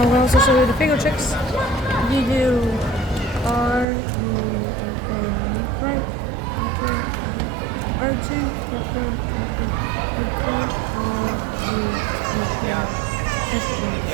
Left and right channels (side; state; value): left; drops out; at 3.9 s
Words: going to also show you the finger tricks. You do R, R2,